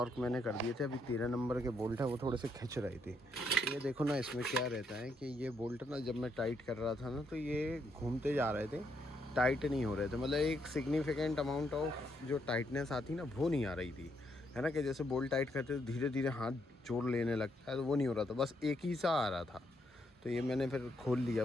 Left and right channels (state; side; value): normal; both; correlation 0.76